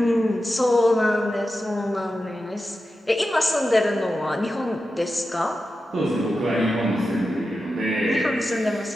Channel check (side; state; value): both; normal; correlation 0.91